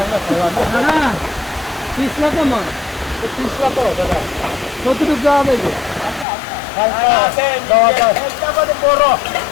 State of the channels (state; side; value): drops out; right; at 6.2 s